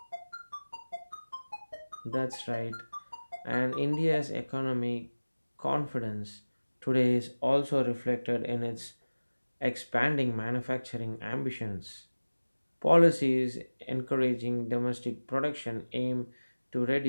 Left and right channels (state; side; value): inverted; both; correlation -1.00